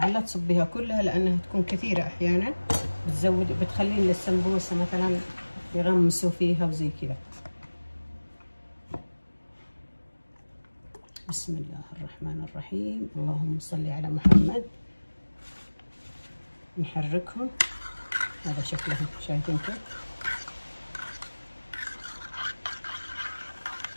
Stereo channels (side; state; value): both; inverted; correlation -1.00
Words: لا تصبيها كلها لانها تكون كثيرة احيانا، بتخلين للسمبوسة مثلا يغمسوا فيها وزي كذا. بسم الله الرحمن الرحيم. اللهم صل على محمد. نحركهم. هذا شكلهم، شايفين كيف؟